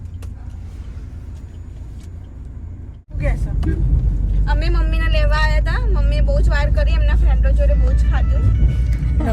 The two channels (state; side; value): identical; both; correlation 1.00